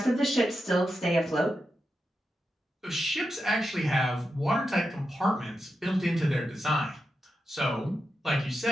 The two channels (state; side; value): normal; both; correlation 0.88